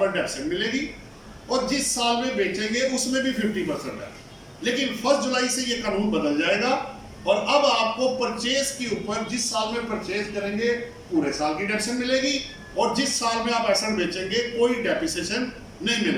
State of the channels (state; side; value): identical; both; correlation 1.00